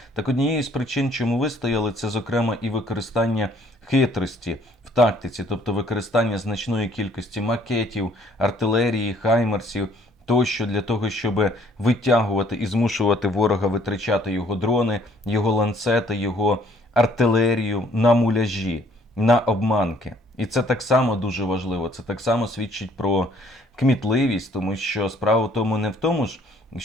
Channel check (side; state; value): both; normal; correlation 0.61